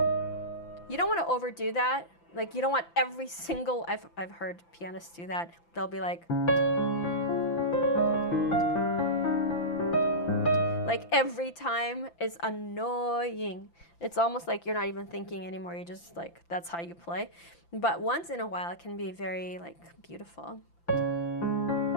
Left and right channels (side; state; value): right; late; 5.9 ms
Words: don't want to overdo that. Like, you don't want every single, I've heard pianists do that. They'll be like every time is annoying. It's almost like you're not even thinking anymore. You're just like, that's how you play. But once in a while, it can be very like beautiful.